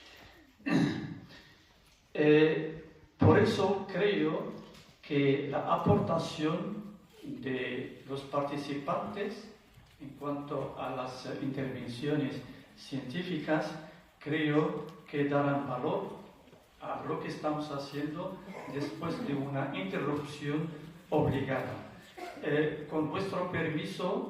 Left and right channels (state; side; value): identical; both; correlation 1.00